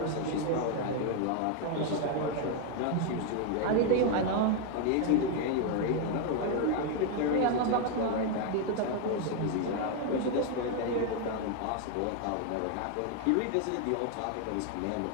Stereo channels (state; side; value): different; both; correlation 0.01